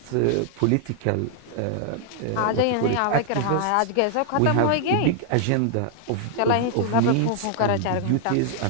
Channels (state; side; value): different; both; correlation -0.01